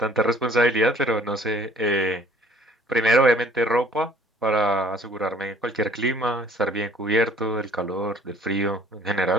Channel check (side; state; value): both; normal; correlation 0.55